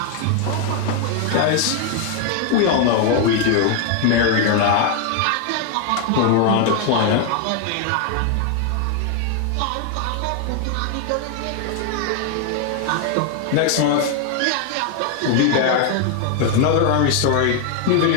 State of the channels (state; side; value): different; both; correlation 0.01